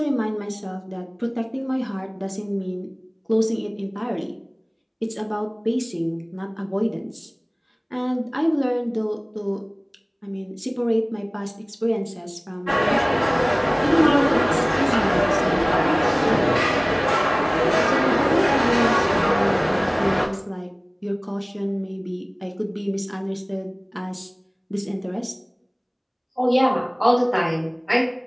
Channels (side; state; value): both; identical; correlation 1.00